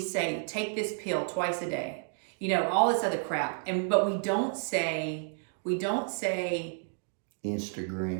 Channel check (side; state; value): left; silent; 57 dB below the other